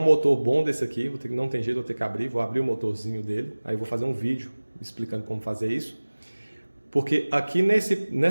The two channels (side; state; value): both; inverted; correlation -1.00